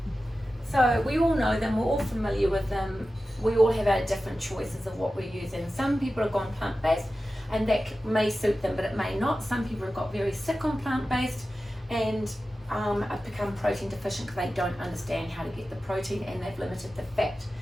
So we all know them, we're all familiar with them. We all have our different choices of what we're using. Some people have gone plant-based, and that may suit them, but it may not. Some people have got very sick on plant-based, and have become protein deficient because they don't understand how to get the protein, and they've limited the fat.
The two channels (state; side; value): normal; both; correlation 0.94